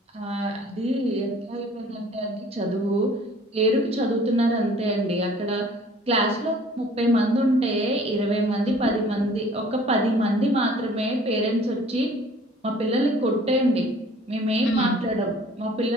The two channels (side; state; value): both; normal; correlation 0.52